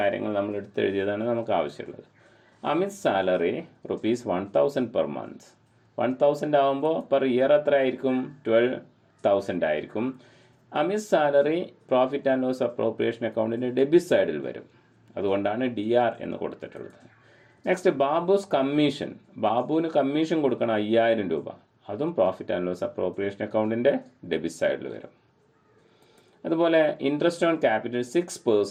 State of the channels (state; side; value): identical; both; correlation 1.00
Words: നമ്മൾ എടുത്തെഴുതിയതാണ് നമുക്ക് ആവശ്യമുള്ളത്. Amit salary rupees 1,000 per month. 1,000 ആകുമ്പോൾ പെർ ഇയർ എത്ര ആയിരിക്കും? 12,000 ആയിരിക്കും. Amit salary profit and loss appropriation അക്കൗണ്ടിൻ്റെ ഡെബിറ്റ് സൈഡിൽ വരും. അതുകൊണ്ടാണ് DR എന്ന് കൊടുത്തിട്ടുള്ളത്. Next Babu's commission. ബാബുവിന് കമ്മീഷൻ കൊടുക്കണം 5,000 രൂപ. അതും പ്രോഫിറ്റ് ആൻഡ് ലോസ് അപ്രോപ്രിയേഷൻ അക്കൗണ്ടിൻ്റെ ഡെബിറ്റ് സൈഡിൽ വരും. അതുപോലെ interest on capital